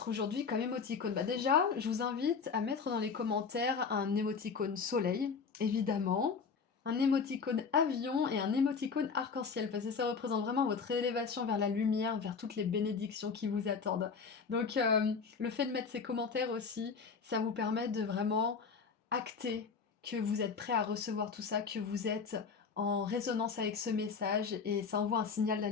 aujourd'hui comme émoticône ? Bah déjà, je vous invite à mettre dans les commentaires un émoticône soleil, évidemment, un émoticône avion et un émoticône arc-en-ciel, parce que ça représente vraiment votre élévation vers la lumière, vers toutes les bénédictions qui vous attendent. Donc le fait de mettre ces commentaires aussi, ça vous permet de vraiment acter que vous êtes prêt à recevoir tout ça, que vous êtes en résonance avec ce message et ça envoie un signal à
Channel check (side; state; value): right; quieter; 5.5 dB